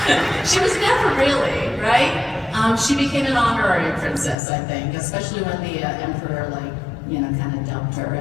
She was never really, right? She became an honorary princess, I think, especially when the emperor, kind of dubbed her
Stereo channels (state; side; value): drops out; right; at 4.4 s